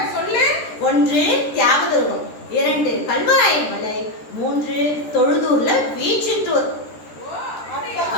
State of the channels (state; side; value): late; right; 13 ms